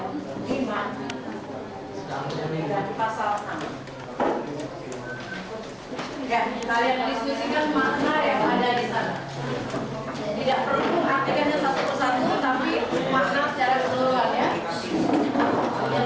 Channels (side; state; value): both; identical; correlation 1.00